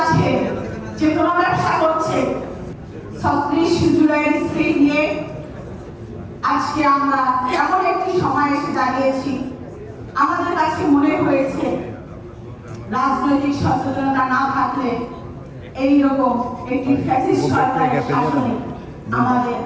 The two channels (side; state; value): both; identical; correlation 1.00